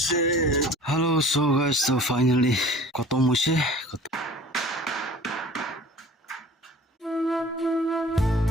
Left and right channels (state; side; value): normal; both; correlation 0.46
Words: Hello, so guys, so finally khatam hoise.